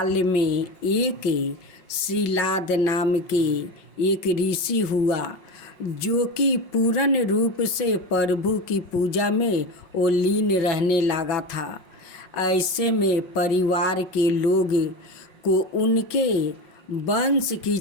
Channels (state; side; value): late; right; 5.5 ms